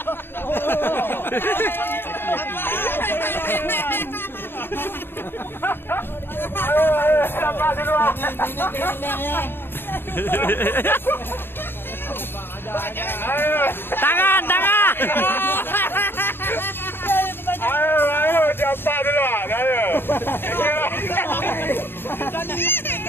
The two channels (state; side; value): late; right; 0.10 ms